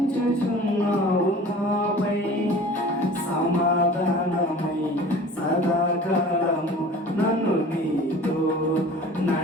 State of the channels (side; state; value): both; normal; correlation 0.43